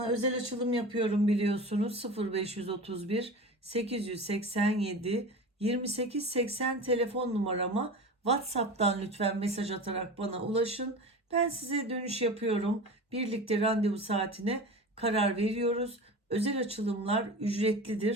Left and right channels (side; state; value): both; normal; correlation 0.32